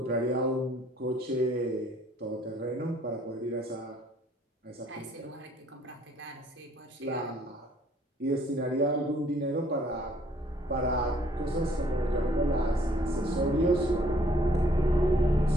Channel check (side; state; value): both; normal; correlation 0.62